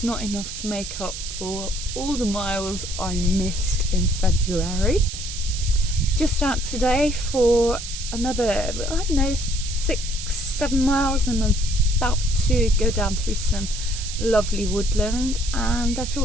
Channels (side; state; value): right; noise; hiss, 8 dB below the sound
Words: not enough to make up for all the miles I missed in February. Just out today for another, I don't know, 6-7 miles, and I'm about to go down through some lovely woodland, and I